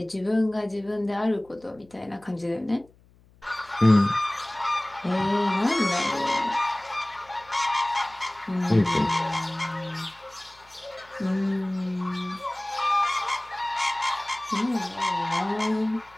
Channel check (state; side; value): noise; left; hum, 29 dB below the sound